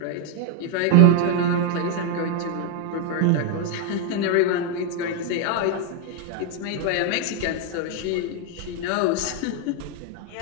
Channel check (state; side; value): different; both; correlation 0.01